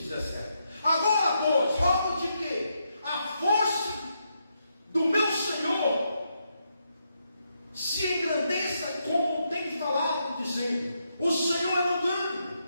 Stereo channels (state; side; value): inverted; both; correlation -0.81